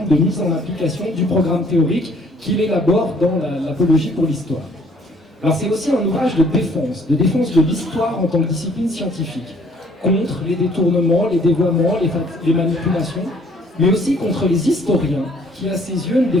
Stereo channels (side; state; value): both; normal; correlation 0.60